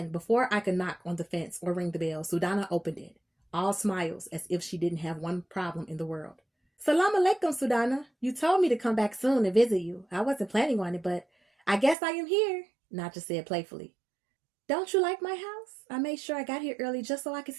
before I could knock on the fence or ring the bell, SUDANA opened it, all smiles as if she didn't have one problem in the world. "Salam alaikum, SUDANA. You told me to come back soon and visit you. I wasn't planning on it, but I guess I am here," Naja said playfully. "Don't you like my house? I made sure I got here early just so I could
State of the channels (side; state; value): left; drops out; at 12.0 s